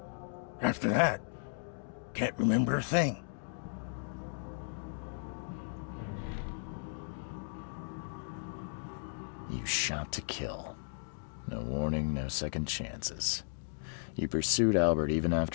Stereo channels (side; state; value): right; silent; digital silence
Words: After that, can't remember a thing. You shot to kill. No warning, no second chances. You pursued Albert even